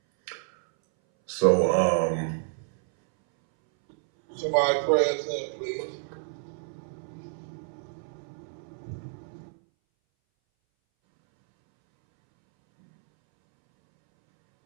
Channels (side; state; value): left; silent; 59 dB below the other